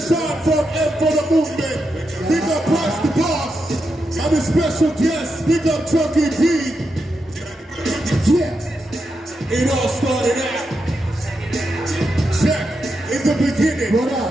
from M for the Movement. Big up Price the Boss. I'm a special guest. Big up Chunky B. Yeah. It all started out. Check. In the beginning, what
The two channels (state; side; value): normal; both; correlation 0.86